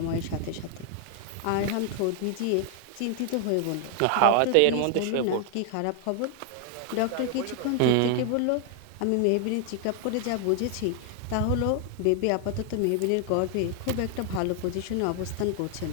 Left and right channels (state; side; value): different; both; correlation 0.00